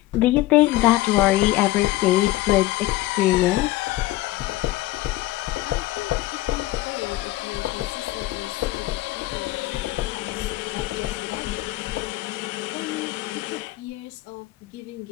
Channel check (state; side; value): quieter; right; 17.4 dB